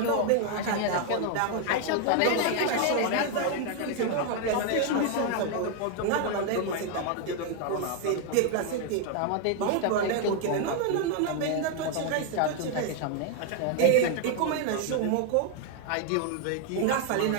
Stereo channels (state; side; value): different; both; correlation 0.00